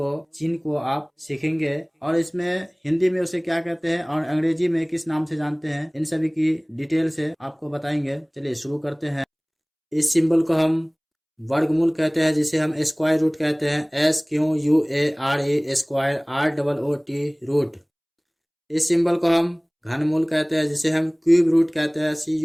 चिन्ह को आप सीखेंगे और इसमें हिंदी में उसे क्या कहते हैं और अंग्रेजी में किस नाम से जानते हैं, इन सभी की डिटेल से आपको बताएंगे। चलिए शुरू करते हैं। इस सिंबल को हम वर्गमूल कहते हैं, जिसे हम स्क्वायर रूट कहते हैं। SQUARE square ROOT root. इस सिंबल को हम घनमूल कहते हैं, जिसे हम क्यूब रूट कहते हैं।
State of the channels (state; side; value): identical; both; correlation 1.00